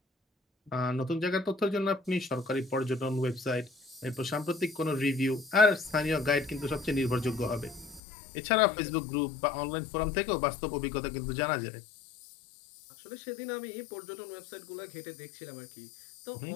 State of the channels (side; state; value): right; drops out; at 8.0 s